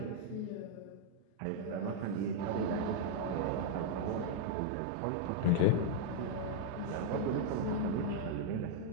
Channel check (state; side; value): different; both; correlation -0.01